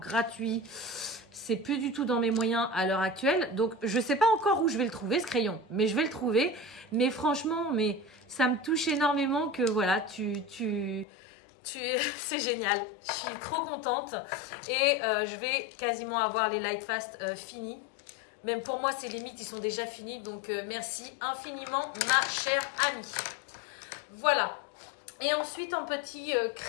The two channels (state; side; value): drops out; right; at 11.1 s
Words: c'est plus du tout dans mes moyens à l'heure actuelle. Donc je sais pas encore où je vais le trouver ce crayon, mais je vais le trouver. Mais franchement, ça me touche énormément que voilà, c'est génial. Je suis trop contente et je vais quasiment avoir les Lightfast finis. Même pour moi, ces limites, ils sont déjà finis. Donc, merci infiniment, ma chère amie. Voilà. Et ensuite, en petit